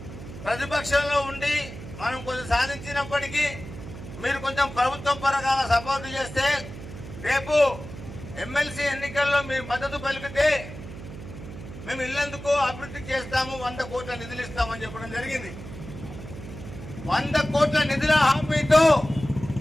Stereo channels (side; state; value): right; noise; hum, 12 dB below the sound